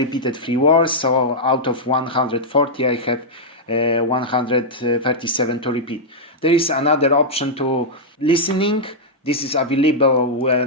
3 words, so out of 140 I have 137 to repeat. There is another option to listening. This is available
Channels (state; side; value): normal; both; correlation -0.06